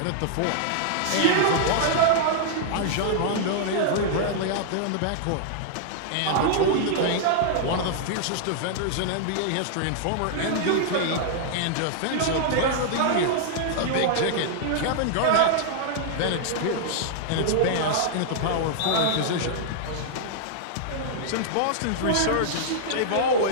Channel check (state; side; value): different; both; correlation -0.01